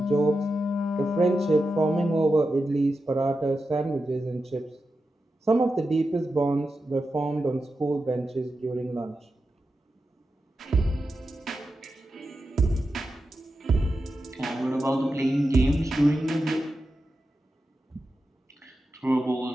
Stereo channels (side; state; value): both; normal; correlation 0.90